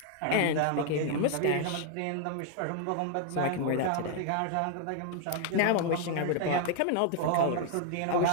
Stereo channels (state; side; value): different; both; correlation 0.00